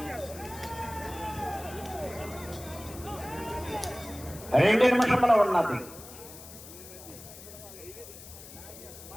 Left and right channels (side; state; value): left; noise; hiss, 15 dB below the sound